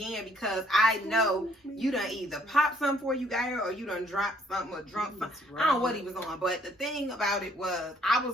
because I know you done either pop something before you got here or you done dropped something or drunk something. I don't know what he was on. But the thing about it was I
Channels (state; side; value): normal; both; correlation 0.64